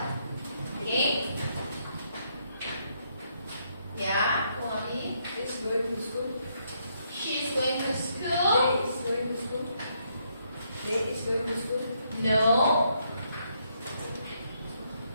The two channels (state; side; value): inverted; both; correlation -0.75